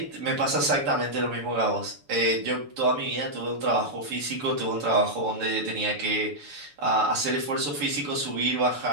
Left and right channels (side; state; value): left; late; 7.0 ms